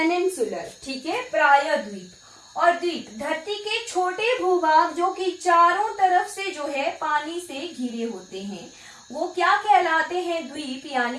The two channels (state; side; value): identical; both; correlation 1.00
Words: ठीक है, प्रायद्वीप। और द्वीप, धरती के छोटे भूभाग जो कि चारों तरफ से जो है पानी से घिरे होते हैं, वो क्या कहलाते हैं? द्वीप